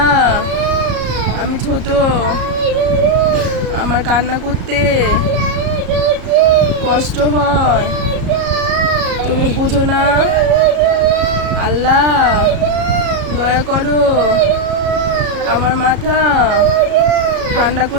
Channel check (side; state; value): left; late; 34 ms